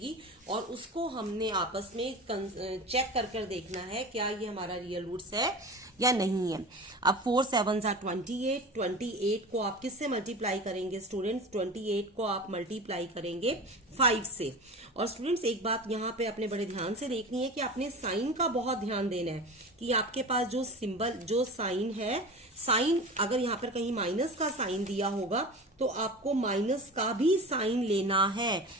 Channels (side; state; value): both; normal; correlation 0.32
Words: और उसको हमने आपस में चेक कर देखना है क्या ये हमारा रियल रूट्स है या नहीं है। अब 4 7s are 28। 28 को आप किससे मल्टीप्लाई करेंगे स्टूडेंट्स? 28 को आप मल्टीप्लाई करेंगे 5 से। और स्टूडेंट्स एक बात यहाँ पे अपने बड़े ध्यान से देखनी है कि आपने साइन का बहुत ध्यान देना है कि आपके पास जो सिंबल, जो साइन है, साइन अगर यहाँ पर कहीं माइनस का साइन दिया होगा तो आपको माइनस का भी साइन लेना है।